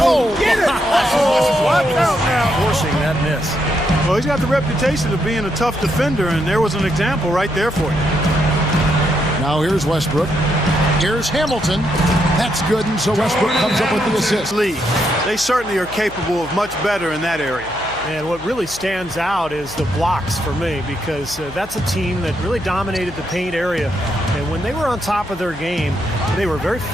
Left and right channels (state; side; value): noise; left; hum, 18 dB below the sound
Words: get it! Watch out now. Forcing that miss. Well, he's got the reputation of being a tough defender, and there was an example right there for you. Now here's Westbrook. Here's Hamilton. That's good, and so Westbrook comes up with the assist. They certainly are capable of much better in that area. And what really stands out is the blocks for me, because that's a team that really dominated the paint area. And when they were on top of their game, they were very